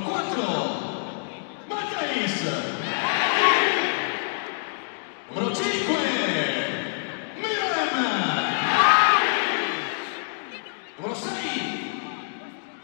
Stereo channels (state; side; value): silent; right; digital silence